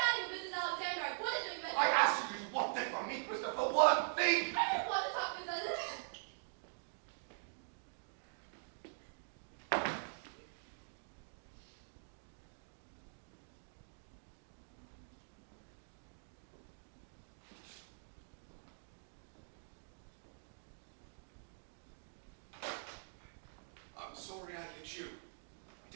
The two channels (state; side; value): silent; left; digital silence